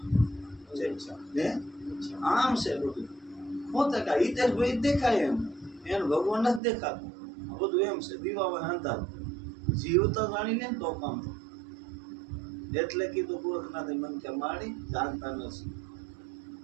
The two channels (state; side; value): drops out; left; at 6.6 s